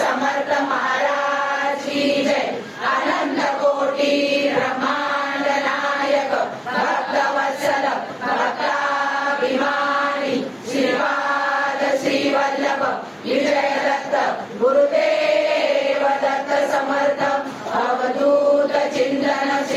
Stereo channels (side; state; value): both; identical; correlation 1.00